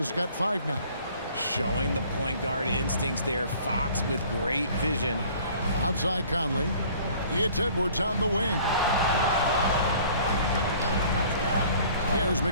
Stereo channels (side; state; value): both; inverted; correlation -0.52